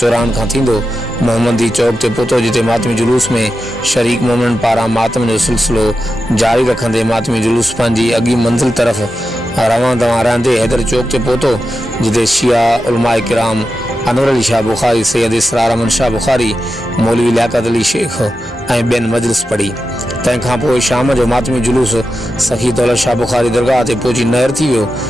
खां थींदो मोहम्मदी चौक ते पहुतो, जिते मातमी जुलूस में शरीक मोमिननि पारां मातम जो सिलसिलो जारी रखंदे मातमी जुलूस पंहिंजी अॻी मंज़िल तरफ़ रवां दवां रहंदे हैदर चौक ते पहुतो, जिते शिया उलमाए किराम अनवर अली शाह बुखारी, सैयद इसरार अमन शाह बुखारी, मौलवी लियाकत अली शेख ऐं ॿियनि मजलिस पढ़ी। तंहिंखां पोइ शाम जो मातमी जुलूस सखी दौलत शाह बुखारी दरगाह ते पहुची नहर थी वियो,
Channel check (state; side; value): normal; both; correlation 0.90